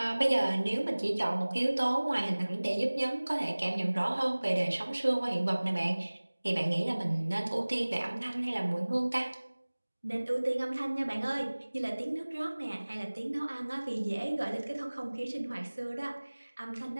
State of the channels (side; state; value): both; inverted; correlation -1.00